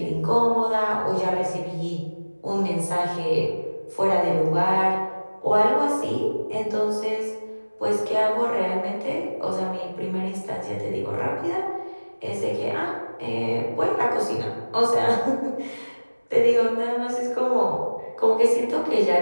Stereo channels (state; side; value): inverted; both; correlation -1.00